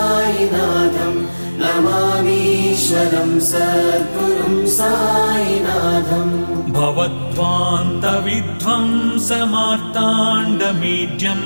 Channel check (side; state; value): both; inverted; correlation -1.00